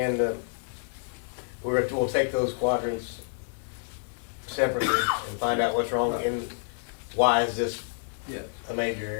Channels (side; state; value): right; silent; digital silence